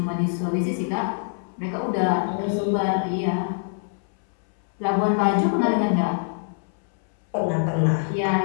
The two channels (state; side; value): silent; right; 62 dB below the other